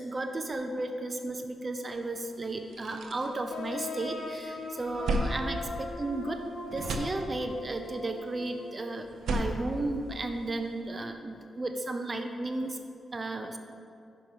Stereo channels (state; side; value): normal; both; correlation 0.86